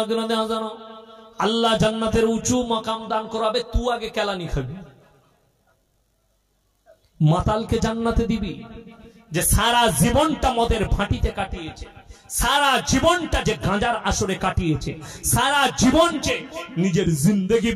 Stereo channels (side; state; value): both; identical; correlation 1.00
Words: হাসানাহ। আল্লাহ জান্নাতের উঁচু মাকাম দান করাবে, তুই আগে কেলানি খাবি। মাতালকে জান্নাতে দিবি যে সারা জীবনটা মদের ভাটিতে কাটিয়েছে, সারা জীবনটা যে গাঁজার আসরে কাটিয়েছে, সারা জীবন যে নিজের জিন্দেগি